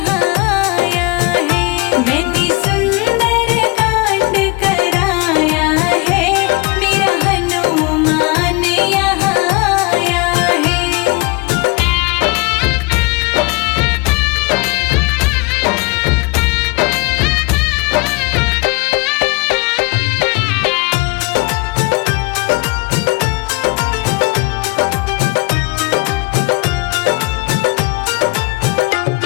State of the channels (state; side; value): quieter; right; 26.7 dB